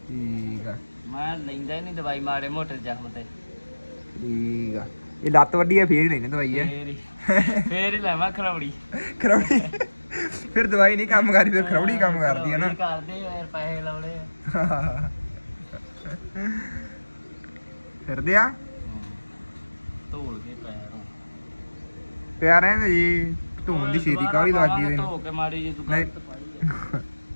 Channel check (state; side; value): inverted; both; correlation -1.00